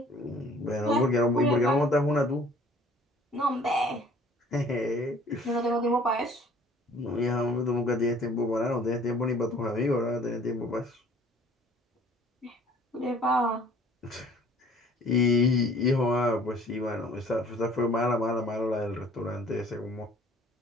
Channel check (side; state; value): both; normal; correlation 0.53